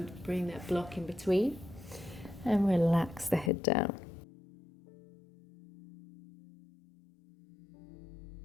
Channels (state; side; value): drops out; right; at 3.5 s